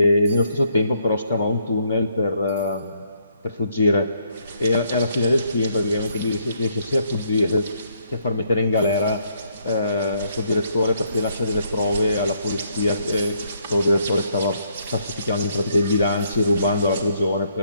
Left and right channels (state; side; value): inverted; both; correlation -0.71